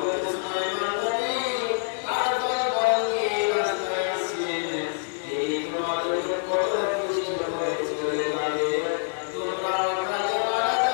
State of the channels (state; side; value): silent; right; 61 dB below the other